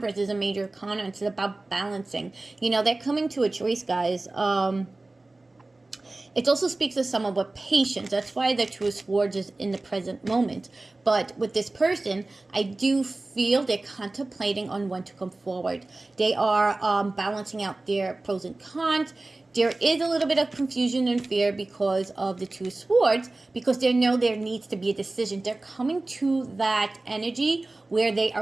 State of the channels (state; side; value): quieter; left; 3.0 dB